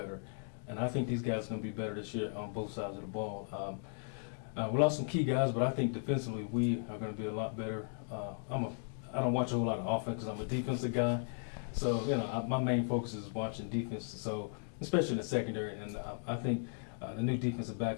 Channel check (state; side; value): silent; right; digital silence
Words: And I think these guys are gonna be better this year on both sides of the ball. We lost some key guys, but I think defensively we are gonna be a lot better. I don't watch a whole lot of offense because I'm a defensive guy. So my main focus is watching defense. So especially in the secondary, and I think the new defensive back